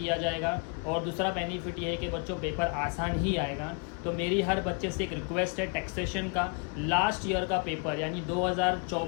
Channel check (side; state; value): right; quieter; 34.6 dB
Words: जाएगा। और दूसरा बेनिफिट ये है कि बच्चों पेपर आसान ही आएगा। तो मेरी हर बच्चे से एक रिक्वेस्ट है, टैक्सेशन का लास्ट ईयर का पेपर यानी